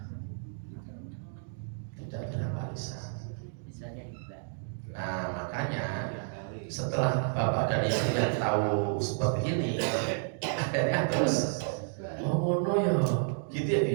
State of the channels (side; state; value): left; silent; digital silence